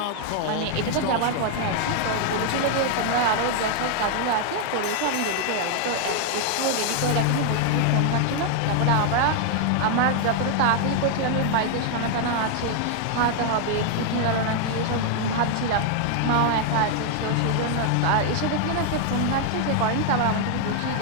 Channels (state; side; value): different; both; correlation 0.00